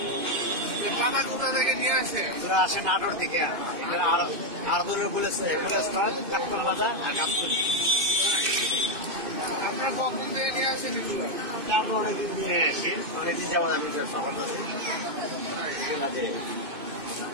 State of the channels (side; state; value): left; late; 2.6 ms